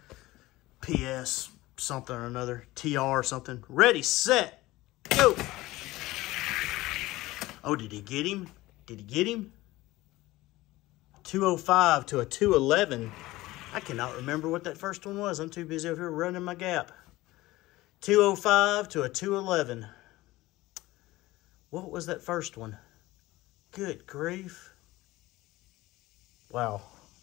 PS something or another. TR or something. Ready, set, go. Oh, did he get him? Did he get him? 205 to a 211. I cannot remember what that first one was. I'm too busy over here running my gap. 205 to a 211. What was that first one? Good grief. Wow.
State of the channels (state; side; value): quieter; right; 18.4 dB